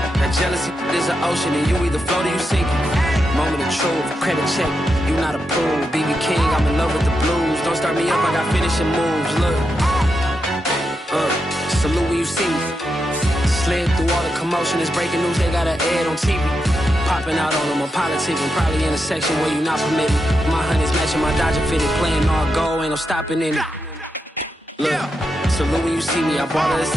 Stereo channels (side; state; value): both; normal; correlation 0.86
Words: That jealousy is an ocean and you either float or you sink it. Moment of truth, credit check, you not approved. BB King, I'm in love with the blues. Don't start me up, I got finishing moves, look. Salute when you see me. Slid through all the commotion, it's breaking news, they got an ad on TV. Popping out on them, I'm politicking, probably in a section where you not permitted. My honey's matching my Dodger fitted, playing all goal, ain't no stopping in it. Look, salute when you see me, I bought her a